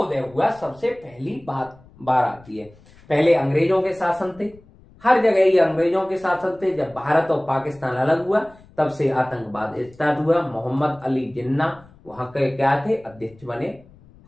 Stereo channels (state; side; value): noise; left; rumble, 26 dB below the sound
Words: हुआ? सबसे पहली बार आती है, पहले अंग्रेजों के शासन थे, हर जगह ही अंग्रेजों के शासन थे। जब भारत और पाकिस्तान अलग हुआ तब से आतंकवाद स्टार्ट हुआ। मोहम्मद अली जिन्ना वहां के क्या थे? अध्यक्ष बने।